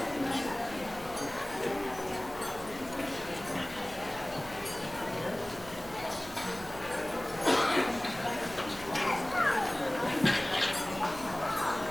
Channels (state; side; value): noise; right; hum, 17 dB below the sound